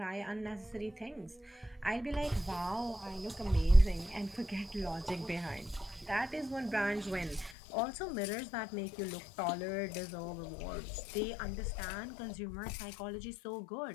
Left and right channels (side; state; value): right; drops out; at 7.6 s